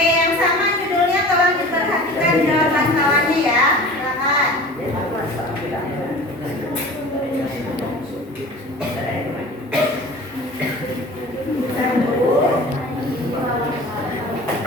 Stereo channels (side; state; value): both; normal; correlation 0.40